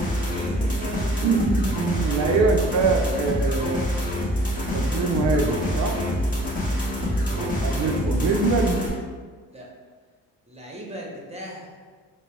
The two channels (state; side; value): normal; both; correlation 0.52